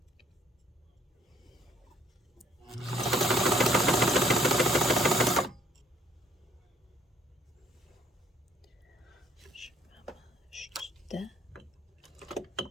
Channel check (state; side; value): normal; both; correlation 0.63